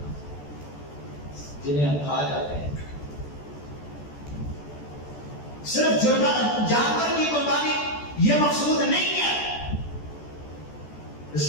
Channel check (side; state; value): right; late; 14 ms